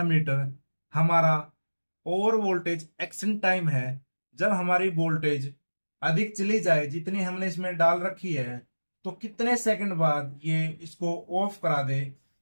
हमारा ओवर वोल्टेज एक्शन टाइम है। जब हमारी वोल्टेज अधिक चली जाए जितनी हमने इसमें डाल रखी है तो कितने सेकंड बाद ये इसको ऑफ करा दे,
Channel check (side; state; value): both; inverted; correlation -1.00